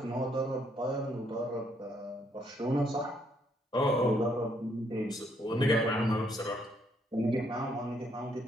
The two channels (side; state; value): both; normal; correlation 0.71